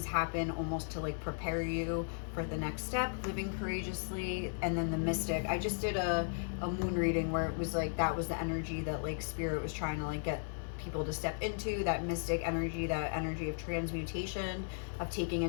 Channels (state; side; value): silent; right; digital silence